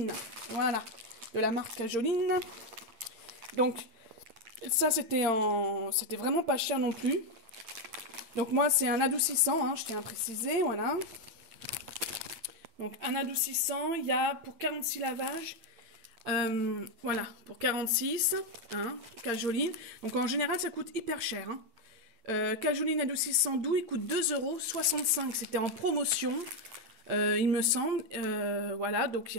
Voilà, de la marque Cajoline. Donc, ça c'était vraiment pas cher non plus. Donc moi c'est un adoucissant, hein, je tiens à préciser, voilà. Donc un adoucissant, il y a pour 46 lavages, voilà, pour 46, hein, Cajoline. Donc en général ça coûte hyper cher. Hein. Cajoline adoucissant doux, il coûte 2,65 €, c'était en promotion, il me semble. Voilà, donc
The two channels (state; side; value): late; left; 8.8 ms